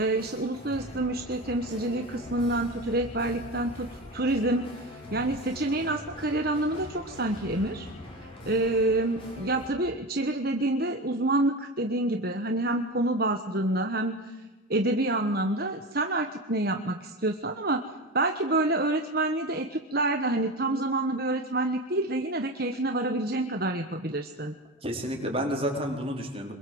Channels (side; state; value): both; normal; correlation 0.25